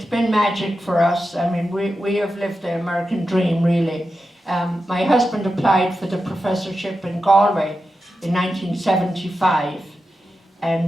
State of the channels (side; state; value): both; normal; correlation 0.90